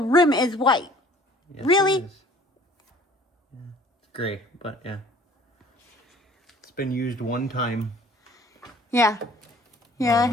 is white. Yes, Really? it is. Yeah, it's gray, but yeah, it's been used one time. Yeah, it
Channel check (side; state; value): both; normal; correlation 0.52